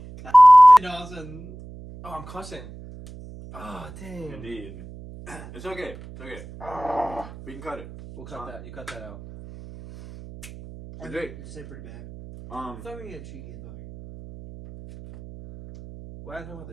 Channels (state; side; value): noise; right; hum, 17 dB below the sound